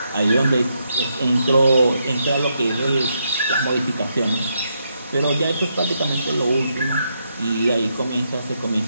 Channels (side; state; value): both; inverted; correlation -0.80